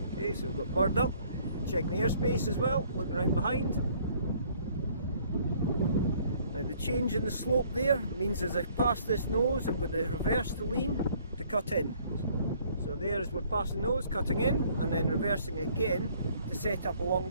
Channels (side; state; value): both; inverted; correlation -0.60